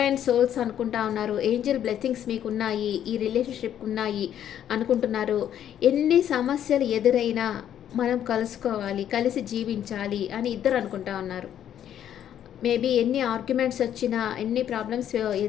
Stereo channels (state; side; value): quieter; right; 10.3 dB